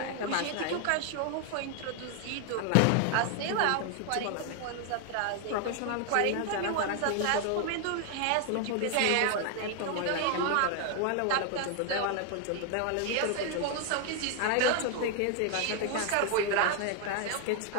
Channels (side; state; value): both; different; correlation 0.00